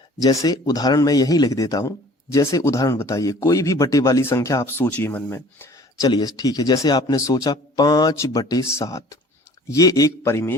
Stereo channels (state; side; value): normal; both; correlation 0.50